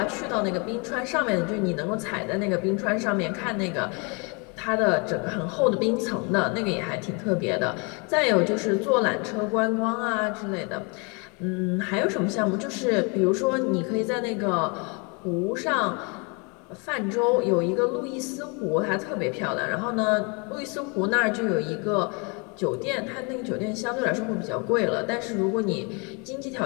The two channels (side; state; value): right; quieter; 32.1 dB